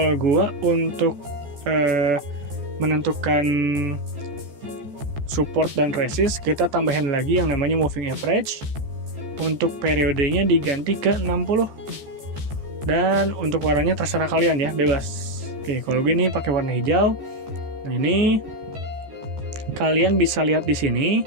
gua untuk menentukan support dan resist, kita tambahin lagi yang namanya moving average. Untuk periodenya diganti ke 60. Dan untuk warnanya terserah kalian ya, bebas. Oke, kalau gini pakai warna hijau. Nah, ini kalian bisa lihat di sini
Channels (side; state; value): left; late; 14 ms